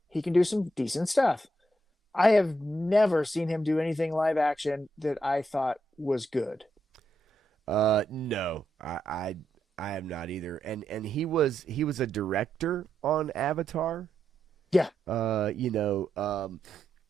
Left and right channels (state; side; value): normal; both; correlation 0.81